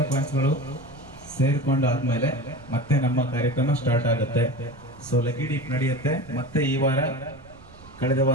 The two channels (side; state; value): right; noise; rumble, 22 dB below the sound